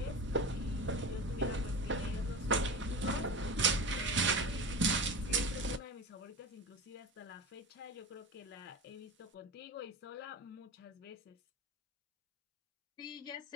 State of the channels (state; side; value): normal; both; correlation 0.28